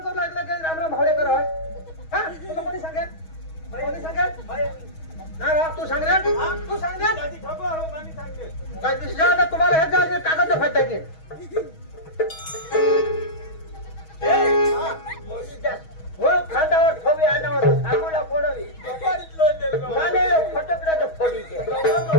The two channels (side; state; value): right; late; 6.3 ms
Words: करू लागलं की राम राम भावड्या कर हा तुला कोणी सांगेल कोणी सांगेल ना राव तू सांग रे तू सांग रे काय दिसलं तुम्हाला हे जागे कागद फाटते की खांद्यावर ठोवी आणावर आंघोळा फोडवी माने फटकड्याचं फोडी